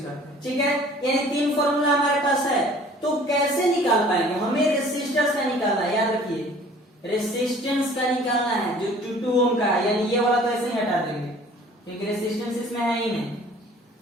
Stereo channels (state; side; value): normal; both; correlation 0.51